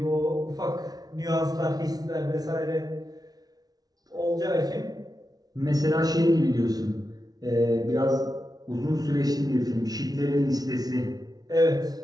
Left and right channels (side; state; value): left; late; 0.19 ms